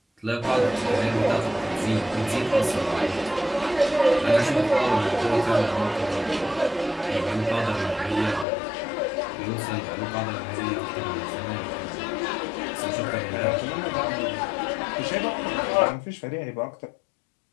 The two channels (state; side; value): drops out; right; at 8.5 s